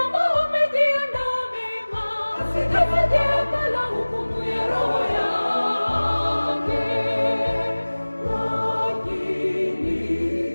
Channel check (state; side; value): inverted; both; correlation -1.00